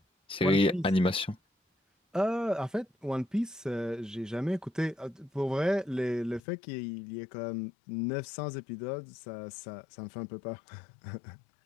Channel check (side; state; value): right; drops out; at 6.4 s